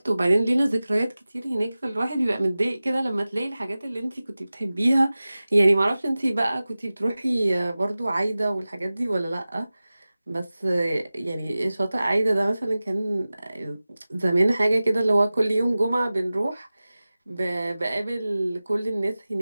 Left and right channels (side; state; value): both; inverted; correlation -0.97